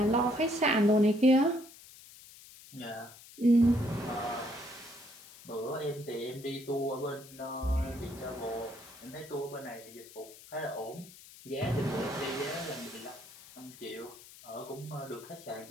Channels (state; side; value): noise; left; hiss, 19 dB below the sound